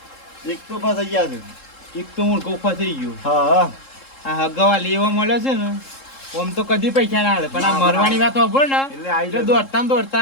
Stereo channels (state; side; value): late; right; 3.7 ms